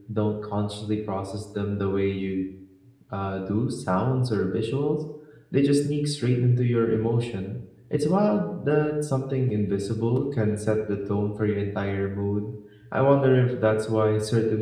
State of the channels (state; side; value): identical; both; correlation 1.00